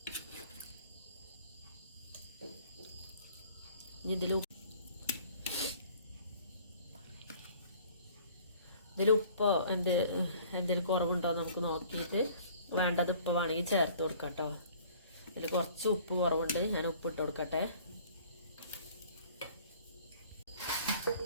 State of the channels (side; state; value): both; inverted; correlation -0.52